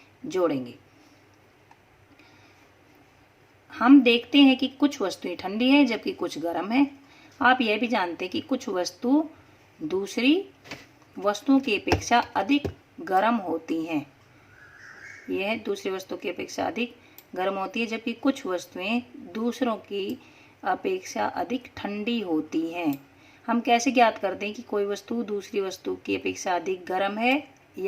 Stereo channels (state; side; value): identical; both; correlation 1.00